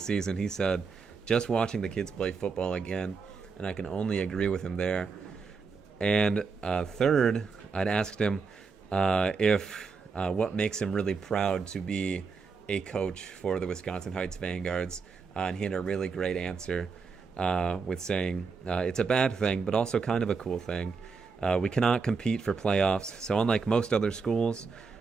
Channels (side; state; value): left; quieter; 5.0 dB